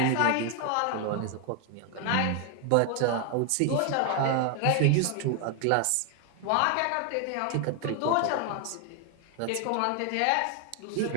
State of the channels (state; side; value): different; both; correlation 0.00